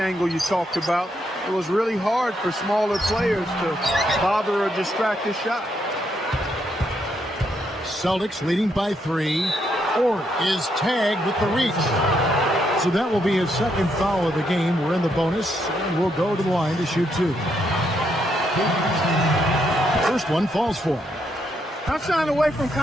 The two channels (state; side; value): normal; both; correlation 0.77